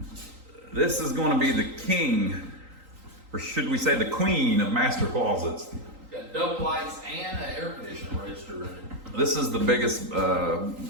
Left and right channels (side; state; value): left; late; 3.9 ms